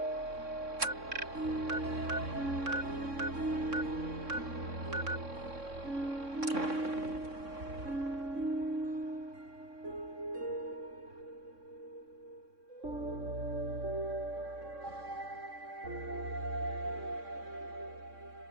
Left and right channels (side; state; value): left; late; 3.6 ms